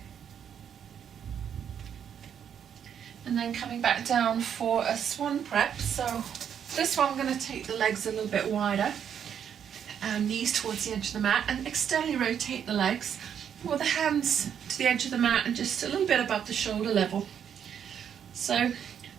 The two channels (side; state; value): left; quieter; 8.5 dB